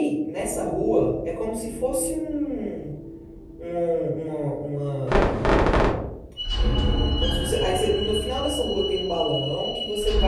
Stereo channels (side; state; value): both; identical; correlation 1.00